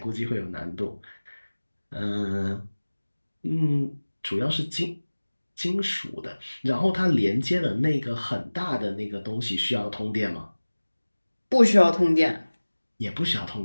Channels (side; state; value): both; inverted; correlation -1.00